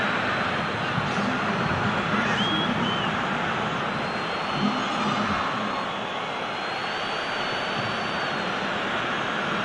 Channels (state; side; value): identical; both; correlation 1.00